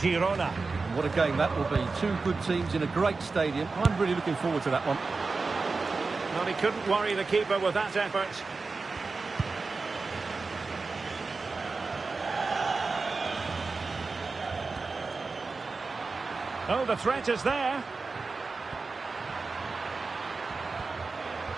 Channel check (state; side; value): quieter; left; 4.1 dB